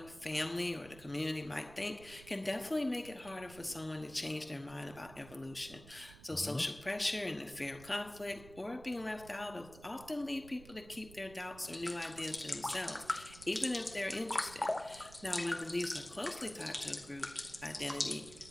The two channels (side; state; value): right; noise; rumble, 17 dB below the sound